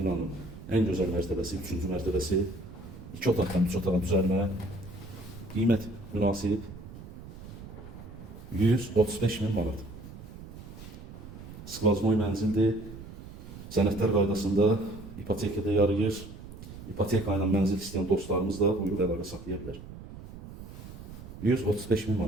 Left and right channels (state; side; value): noise; right; rumble, 14 dB below the sound